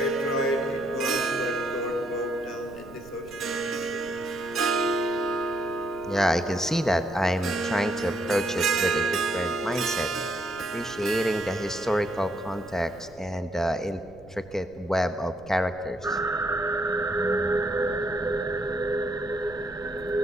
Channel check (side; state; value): right; noise; rumble, 22 dB below the sound